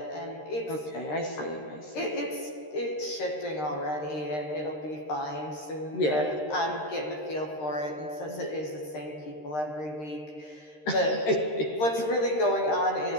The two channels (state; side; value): late; right; 13 ms